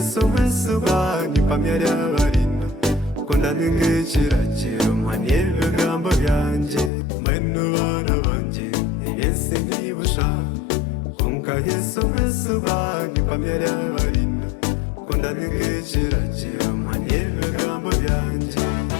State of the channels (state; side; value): drops out; right; at 6.9 s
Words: mwesu bani pamyari abarina Kunda ningekirakiro mwani ibigambo byanjye Mwenu bana banjye Yesu ntibusha Onka Yesu mwesu bani pamyari abarina Kunda ningekirakiro mwani ibigambo byanjye